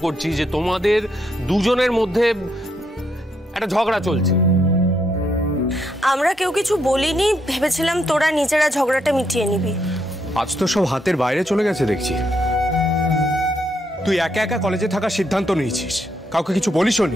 করছি যে তোমাদের দুজনের মধ্যে একটা ঝগড়া চলছে। আমরা কেউ কিছু বলিনি, ভেবেছিলাম তোরা নিজেরা ঝগড়াটা মিটিয়ে নিবি। আজ তো সব হাতের বাইরে চলে গেছে দেখছি। তুই একা একা কলেজে থাকার সিদ্ধান্ত নিয়েছিস, কাউকে কিছু বলিসও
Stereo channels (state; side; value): normal; both; correlation 0.77